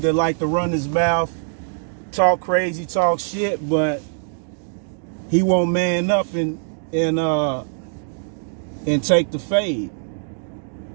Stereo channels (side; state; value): left; silent; digital silence